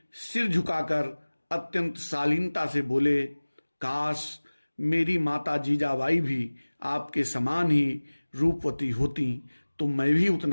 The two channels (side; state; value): both; inverted; correlation -1.00